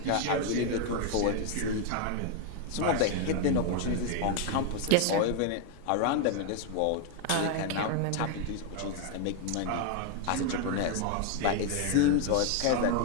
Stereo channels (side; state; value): both; different; correlation 0.01